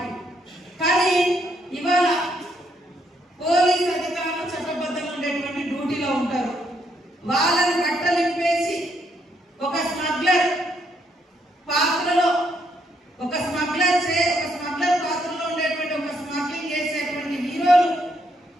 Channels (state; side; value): normal; both; correlation 0.74